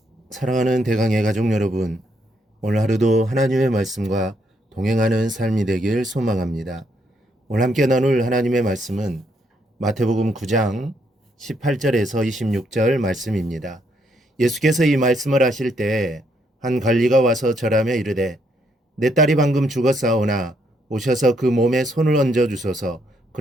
사랑하는 대강의 가족 여러분, 오늘 하루도 하나님의 말씀과 동행하는 삶이 되길 소망합니다. 오늘 함께 나눌 하나님의 말씀은 마태복음 9장 18절에서 26절 말씀입니다. 예수께서 이 말씀을 하실 때 한 관리가 와서 절하며 이르되 내 딸이 방금 죽었사오나 오셔서 그 몸에 손을 얹어 주소서.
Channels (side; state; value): both; normal; correlation 0.74